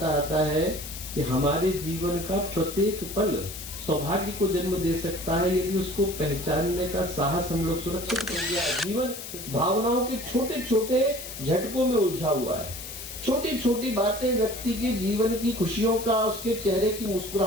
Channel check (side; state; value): left; noise; hiss, 10 dB below the sound